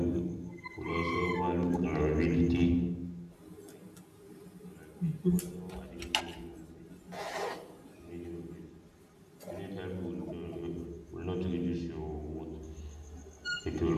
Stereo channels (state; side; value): identical; both; correlation 1.00